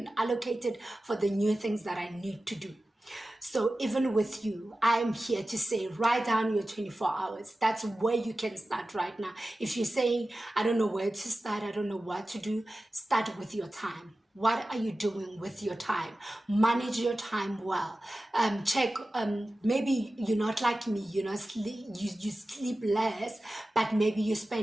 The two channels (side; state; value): both; normal; correlation 0.95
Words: allocate it for the new things that I need to do. So even with you, I'm here to say, write down your 24 hours. That's where you can start right now. If you're saying, I don't know where to start, I don't know what to do, start with your time. What are you doing with your time? Manage your time well. Check, maybe you're not like me, you sleep less, but maybe you